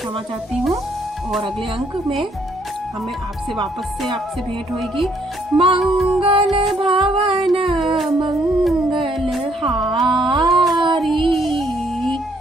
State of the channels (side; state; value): both; normal; correlation 0.68